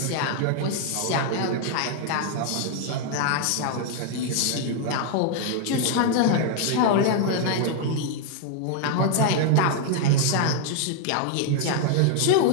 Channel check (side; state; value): both; different; correlation 0.00